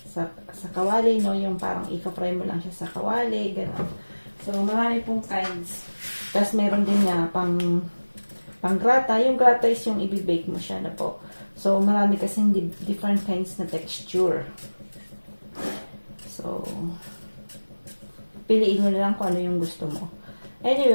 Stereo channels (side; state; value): both; inverted; correlation -1.00